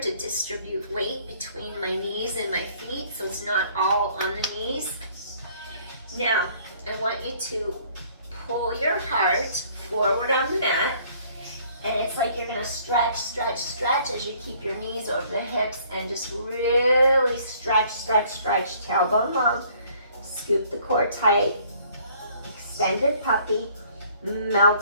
distribute weight between my knees and my feet, so it's not all on the knees. Now, I want you to pull your heart forward on the mat, and it's like you're gonna stretch, stretch, stretch as you keep your knees over the hips and just really stretch, stretch, stretch, tailbone long. Scoop the core tight, extended puppy,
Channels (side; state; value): both; inverted; correlation -0.59